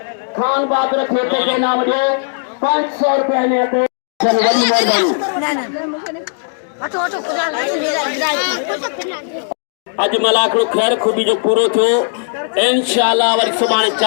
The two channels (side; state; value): right; silent; digital silence